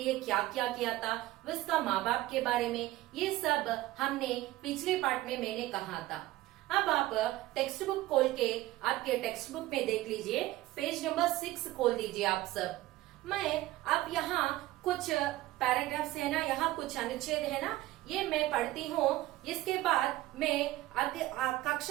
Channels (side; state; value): left; quieter; 16.9 dB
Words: क्या क्या किया था, उसका माँ बाप के बारे में, ये सब हमने पिछले पाठ में मैंने कहा था। अब आप टेक्स्ट बुक खोल के आपके टेक्स्ट बुक में देख लीजिए, पेज नंबर 6 खोल दीजिए आप सब। मैं अब यहाँ कुछ पैराग्राफ्स है ना, यहाँ कुछ अनुच्छेद है ना, ये मैं पढ़ती हूँ। इसके बाद मैं